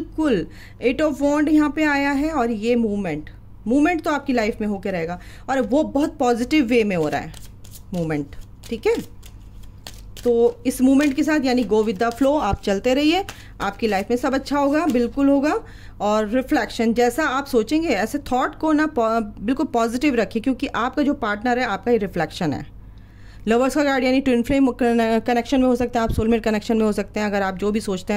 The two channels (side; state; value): both; identical; correlation 1.00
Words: 8 ऑफ वॉन्ड यहाँ पे आया है और ये मूवमेंट तो आपकी लाइफ में होकर रहेगा और वो बहुत पॉजिटिव वे में हो रहा है मूवमेंट। ठीक है, तो इस मूवमेंट के साथ यानी गो विद द फ्लो, आप चलते रहिए, आपकी लाइफ में सब अच्छा होगा, बिल्कुल होगा। और रिफ्लेक्शन, जैसा आप सोचेंगे ऐसे थॉट को ना बिल्कुल पॉजिटिव रखिए, क्योंकि आपका जो पार्टनर है आपका ही रिफ्लेक्शन है। लवर्स का कार्ड यानी ट्विन फ्लेम कनेक्शन में हो सकता है, आप सोलमेट कनेक्शन में हो सकते हैं। अगर आप जो भी सोचते